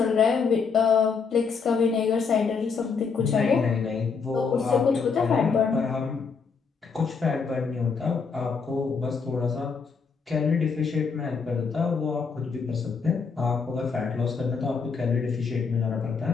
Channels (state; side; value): quieter; right; 5.4 dB